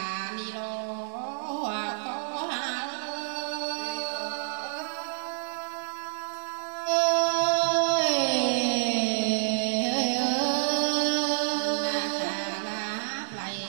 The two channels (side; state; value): left; silent; digital silence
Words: ni lo có hà lại